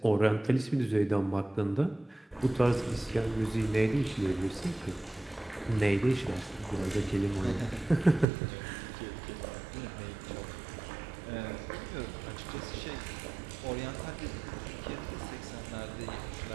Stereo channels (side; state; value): left; drops out; at 8.2 s